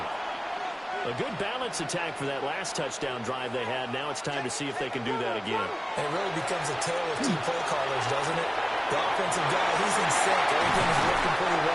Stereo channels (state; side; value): identical; both; correlation 1.00